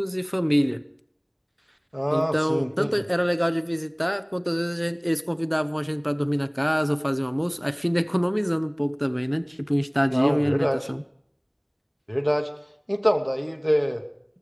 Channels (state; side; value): identical; both; correlation 1.00